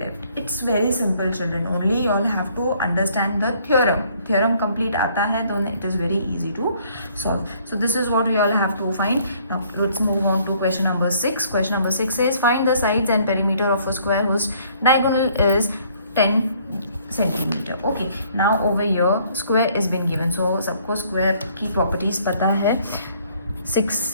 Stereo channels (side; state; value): both; inverted; correlation -0.62